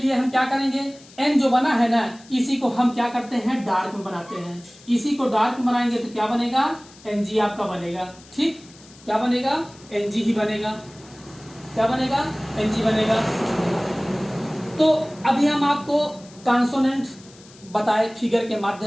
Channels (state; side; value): noise; left; hiss, 23 dB below the sound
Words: हम क्या करेंगे, एन जो बना है ना, इसी को हम क्या करते हैं, डार्क में बनाते हैं। इसी को डार्क में बनाएंगे तो क्या बनेगा, एनजी आपका बनेगा। ठीक, क्या बनेगा, एनजी ही बनेगा। क्या बनेगा, एनजी बनेगा। तो अभी हम आपको कॉन्सोनेंट बताए फिगर के